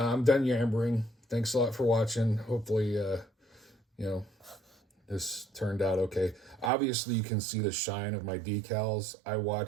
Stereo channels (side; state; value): left; drops out; at 6.7 s